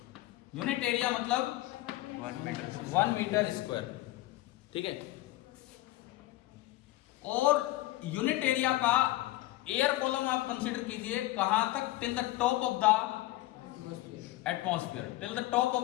यूनिट एरिया मतलब 1 मीटर स्क्वायर, ठीक है। और यूनिट एरिया का एयर कॉलम आप कंसीडर कीजिए, कहां तक? Till the top of the atmosphere, till the top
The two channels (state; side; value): quieter; right; 17.2 dB